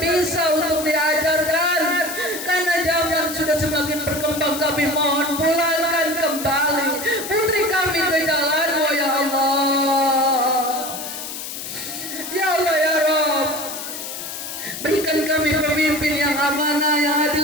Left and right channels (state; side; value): noise; left; hiss, 8 dB below the sound